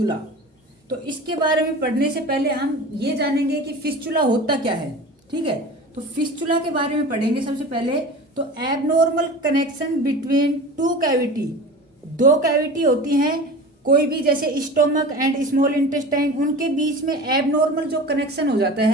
तो इसके बारे में पढ़ने से पहले हम ये जानेंगे कि फिस्चुला होता क्या है, ठीक है। तो फिस्चुला के बारे में पढ़ेंगे सबसे पहले। तो abnormal connection between two cavity, दो कैविटी होती हैं कोई भी, जैसे स्टोमक एंड स्मॉल इंटेस्टाइन, उनके बीच में एबनॉर्मल जो कनेक्शन हो जाता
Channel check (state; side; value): normal; both; correlation 0.35